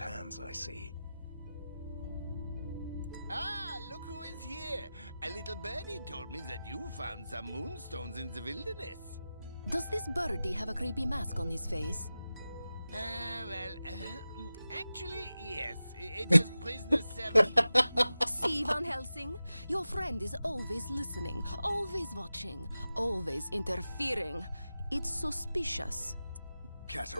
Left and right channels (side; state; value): both; inverted; correlation -0.94